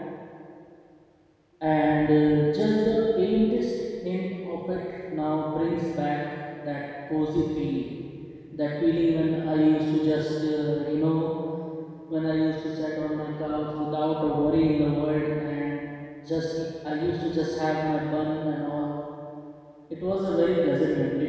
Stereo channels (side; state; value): both; identical; correlation 1.00